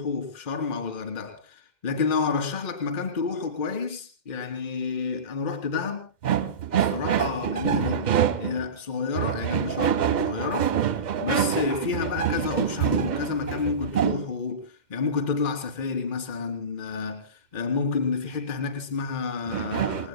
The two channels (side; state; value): right; late; 2.1 ms